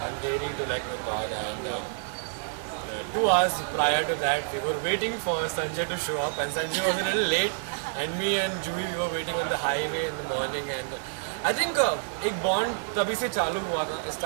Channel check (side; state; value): left; silent; digital silence